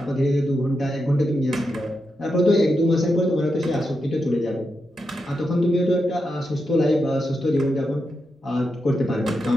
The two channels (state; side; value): normal; both; correlation 0.86